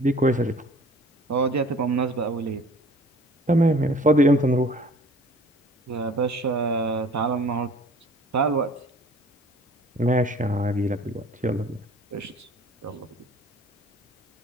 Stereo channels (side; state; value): both; normal; correlation 0.50